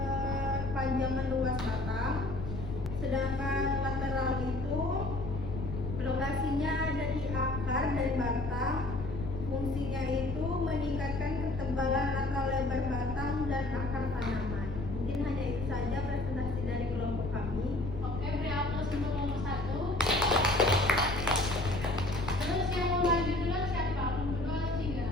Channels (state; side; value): noise; left; rumble, 6 dB below the sound